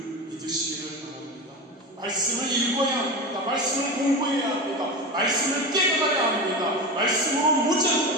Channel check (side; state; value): both; normal; correlation 0.24